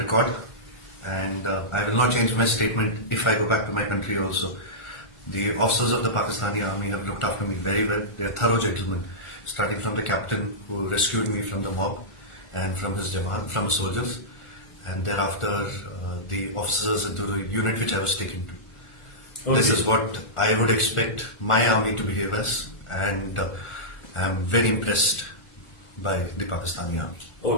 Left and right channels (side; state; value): right; late; 1.4 ms